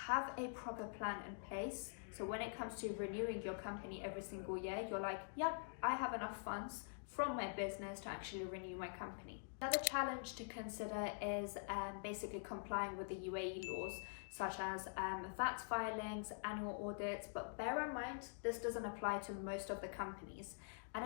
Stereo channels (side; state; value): right; silent; digital silence